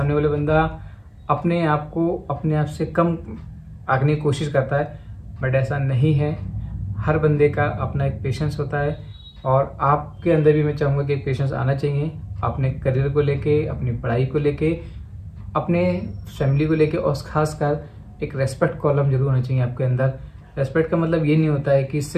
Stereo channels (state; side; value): identical; both; correlation 1.00